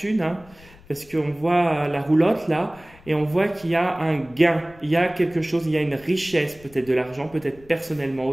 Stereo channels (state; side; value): noise; left; rumble, 24 dB below the sound